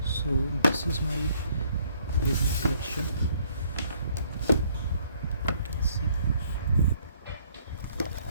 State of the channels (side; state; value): both; inverted; correlation -0.64